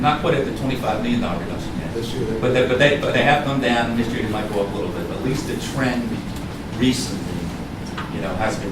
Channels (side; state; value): both; identical; correlation 1.00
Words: quite at the $25 million reduction yet, This year, but they have come down, and this year they might go up a little bit, but at least the trend recently, has